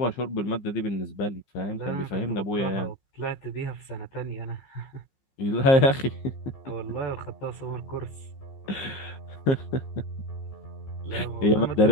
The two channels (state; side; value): late; right; 15 ms